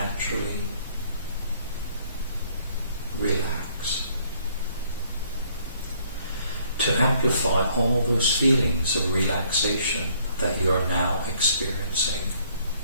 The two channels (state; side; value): inverted; both; correlation -0.63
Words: relax, to amplify all those feelings of relaxation that you are now experiencing.